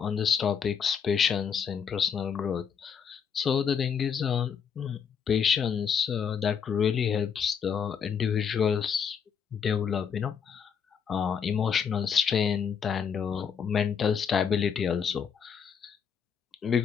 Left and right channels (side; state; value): right; quieter; 7.0 dB